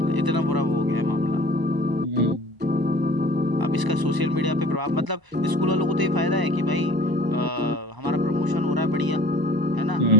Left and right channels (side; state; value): left; late; 1.0 ms